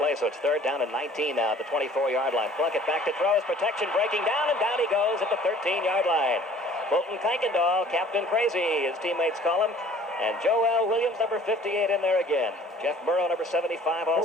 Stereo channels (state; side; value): normal; both; correlation 0.52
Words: so it's third down and 19 now at the 24-yard line. Plunkett back to throw. His protection breaking down, and down he goes at the 13-yard line. Fulton Kuykendall, Captain Crazy, his teammates call him. And Joel Williams, number 58, in there again. Jeff Burrow, number 75,